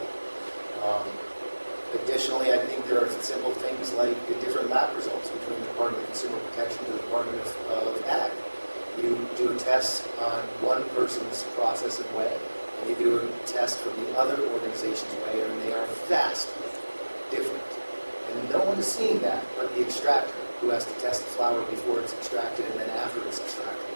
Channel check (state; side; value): inverted; both; correlation -1.00